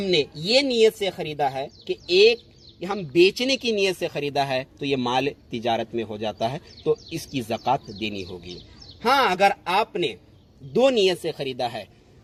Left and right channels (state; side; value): identical; both; correlation 1.00